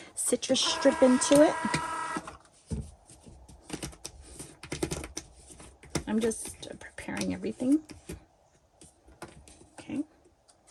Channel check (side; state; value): both; identical; correlation 1.00